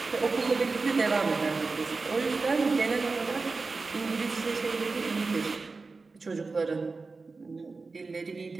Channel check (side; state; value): left; quieter; 4.0 dB